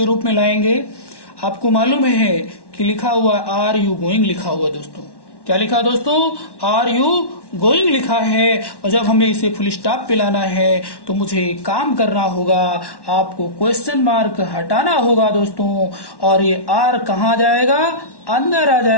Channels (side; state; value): right; late; 1.1 ms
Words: रूप में लाएंगे। आपको मालूम है कि लिखा हुआ आर यू गोइंग लिखा हुआ दोस्तों, क्या लिखा दोस्तों, आर यू गोइंग लिखा है। और जब हमें इसे फुल स्टॉप पे लाना है तो मुझे एक काम करना होगा, आपको क्वेश्चन मार्क हटाना होगा दोस्तों, और ये आर कहाँ जाएगा, अंदर आ